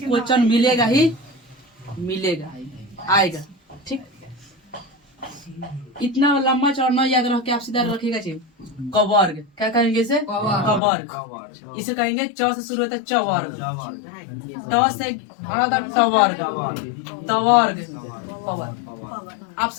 मिलेगा ही मिलेगा, आएगा। ठीक, इतना लंबा चौड़ा न याद रख के आप सीधा रखिएगा। कवर्ग क्या कहेंगे इसे? कवर्ग। इसे कहेंगे च से शुरू होता है चवर्ग, त से टवर्ग, तवर्ग, पवर्ग।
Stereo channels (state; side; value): drops out; right; at 10.8 s